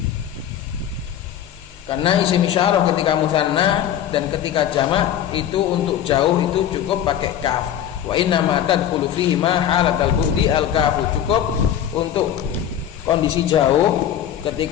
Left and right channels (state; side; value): quieter; right; 10.3 dB